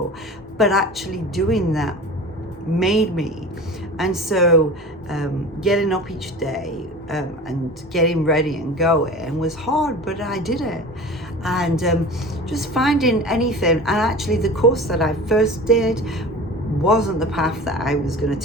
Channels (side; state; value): both; normal; correlation 0.36